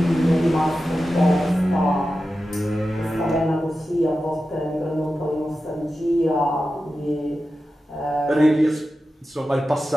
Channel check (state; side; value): normal; both; correlation 0.92